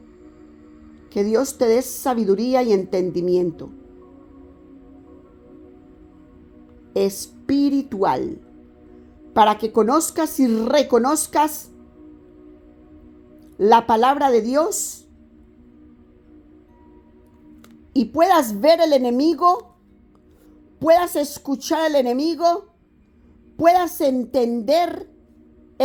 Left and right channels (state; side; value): identical; both; correlation 1.00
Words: que Dios te dé sabiduría y entendimiento espiritual, para que conozcas y reconozcas la palabra de Dios y puedas ver el enemigo, puedas escuchar al enemigo, puedas entender